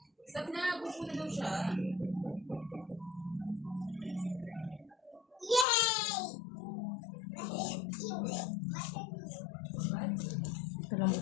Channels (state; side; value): drops out; right; at 5.7 s